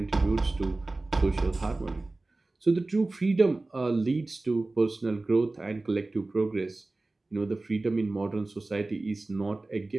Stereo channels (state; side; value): quieter; left; 3.1 dB